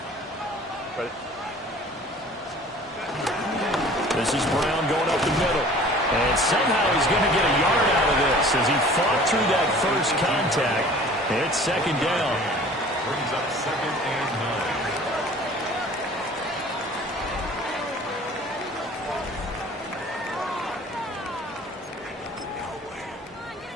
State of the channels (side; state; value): both; normal; correlation 0.47